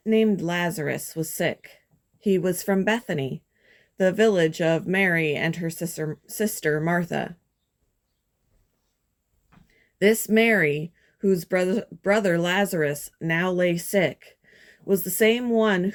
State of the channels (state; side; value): identical; both; correlation 1.00